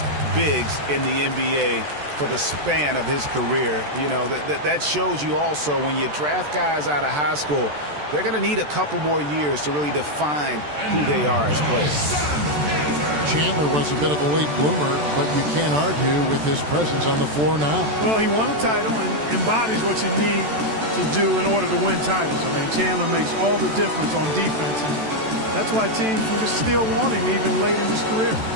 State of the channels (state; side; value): late; left; 14 ms